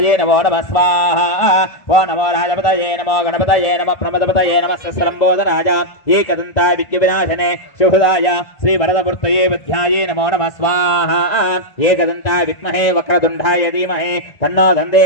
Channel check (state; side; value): late; right; 1.9 ms